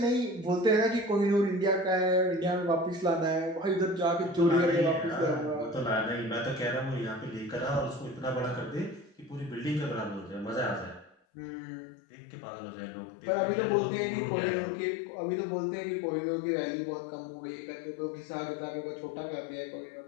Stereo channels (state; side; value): drops out; right; at 11.2 s